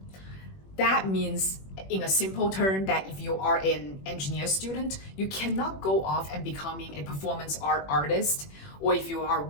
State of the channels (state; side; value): late; right; 21 ms